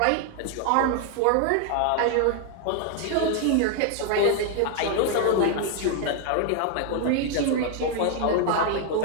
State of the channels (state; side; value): different; both; correlation 0.00